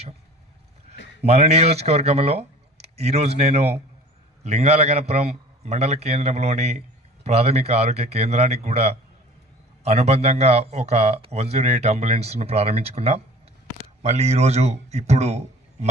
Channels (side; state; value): both; normal; correlation 0.45